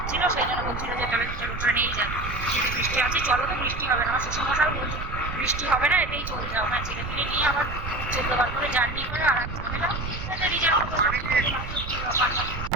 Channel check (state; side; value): noise; right; rumble, 7 dB below the sound